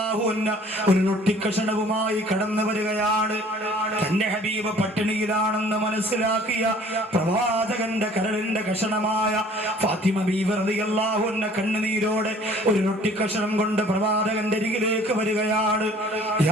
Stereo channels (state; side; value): normal; both; correlation 0.53